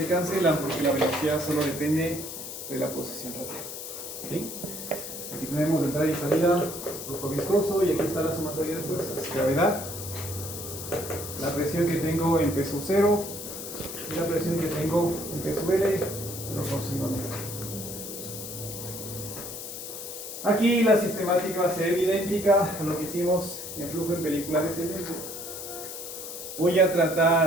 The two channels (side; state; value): left; noise; hiss, 9 dB below the sound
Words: cancelan porque la velocidad solo depende de la posición radial. ¿Sí? Aquí tenemos entrada y salida, flujo viscoso, y aquí está la sumatoria de fuerzas, gravedad, la presión que tengo en P sub 0 y la presión que tengo en P sub L proporcionalmente. Aquí la sistemática va a ser idéntica a lo que hicimos en flujo en película descendente. Voy a